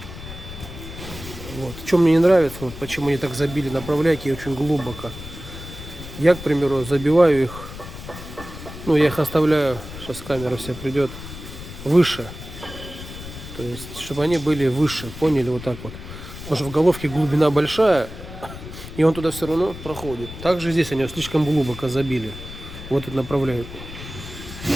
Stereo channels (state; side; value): noise; left; rumble, 12 dB below the sound